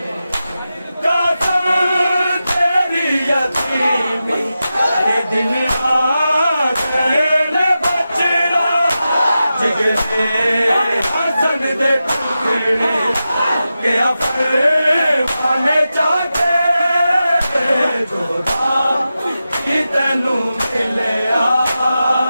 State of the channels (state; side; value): inverted; both; correlation -0.92